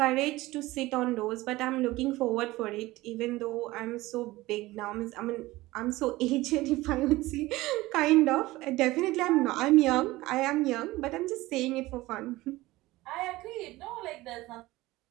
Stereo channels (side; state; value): left; quieter; 18.8 dB